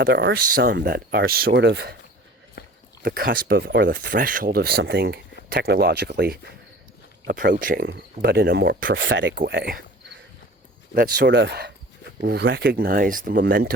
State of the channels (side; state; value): both; normal; correlation 0.43